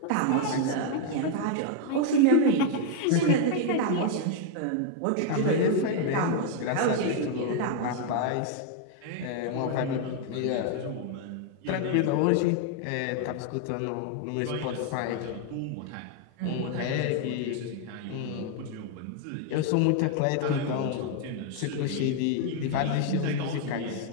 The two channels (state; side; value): different; both; correlation 0.00